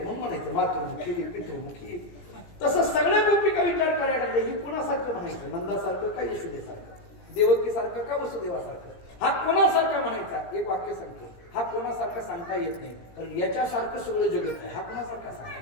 म्हणून म्हणायचं मातृमुखी पितृमुखी. तसं सगळ्या गोपिका विचार करायला लागले, ही कुणासारखं म्हणायचं, नंदासारखं का यशोदेसारखं, देवकीसारखं का वसुदेवासारखं. हा कोणासारखा म्हणायचा, एक वाक्य सांगतो, हा कोणासारखा सांगता येत नाही, कारण याच्यासारखं सगळं जगत आहे, हा कोणासारखा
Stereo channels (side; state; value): right; late; 17 ms